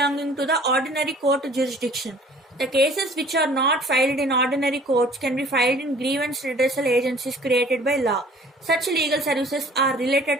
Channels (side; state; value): both; normal; correlation 0.51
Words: to the ordinary court jurisdiction. The cases which are not filed in ordinary courts can be filed in grievance redressal agencies created by law. Such legal services are related